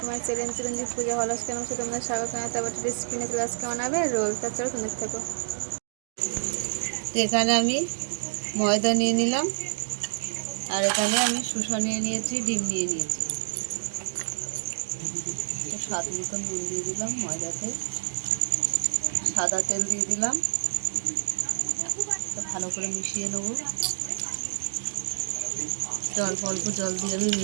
my channel Chiranjit পূজা হল কেন তোমরা স্বাগত জানাতে আবার রেসিপি নিয়ে ক্লাস কেমন হবে রোল তার চলো তোমরা দেখতে থাকো। এখানে আমি ময়দা নিয়ে নিলাম, আর এখানে আমি শসা নিয়ে নিয়েছি, ডিম নিয়ে নিয়েছি। স্বাদ মতন নুন দিয়ে দিলাম, ময়দাতে সাদা তেল দিয়ে দিলাম, ভালো করে মিশিয়ে নেব। অল্প জল দিয়ে আমি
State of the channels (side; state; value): left; silent; 59 dB below the other